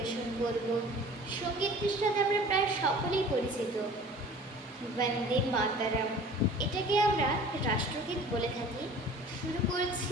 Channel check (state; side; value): normal; both; correlation 0.45